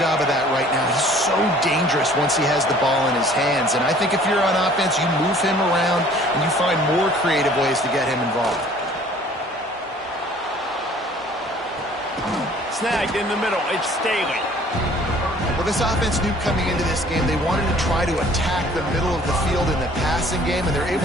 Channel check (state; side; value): normal; both; correlation 0.53